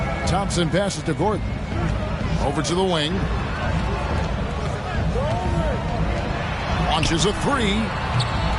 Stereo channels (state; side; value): identical; both; correlation 1.00